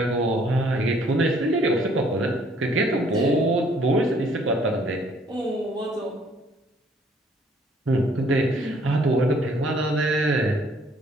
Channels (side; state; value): both; normal; correlation 0.62